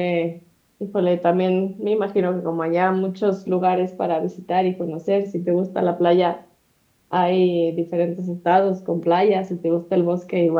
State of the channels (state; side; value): identical; both; correlation 1.00